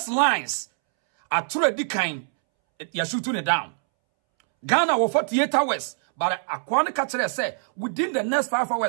lines are already kind. You're shooting it down. Ghana was 48 hours. But Akwane Kachere say within the next 5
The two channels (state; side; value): silent; left; 63 dB below the other